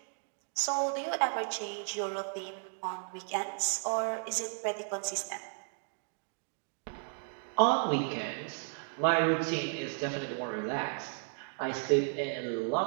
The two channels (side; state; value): left; silent; 55 dB below the other